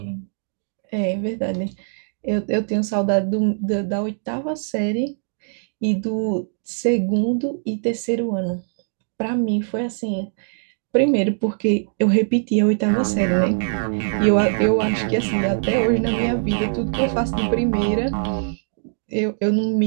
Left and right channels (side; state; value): left; silent; digital silence